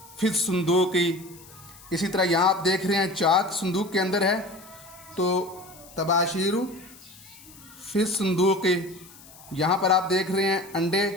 फिस सुंदूकी। इसी तरह यहाँ आप देख रहे हैं चाक संदूक के अंदर है, तो तबाशीरु फिस सुंदूकी। यहाँ पर आप देख रहे हैं अंडे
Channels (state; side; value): noise; left; hiss, 21 dB below the sound